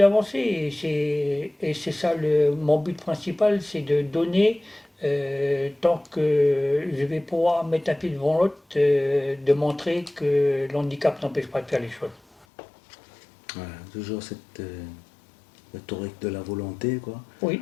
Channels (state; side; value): drops out; right; at 12.5 s